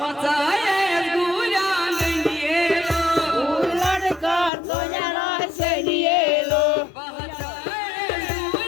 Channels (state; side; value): drops out; right; at 4.5 s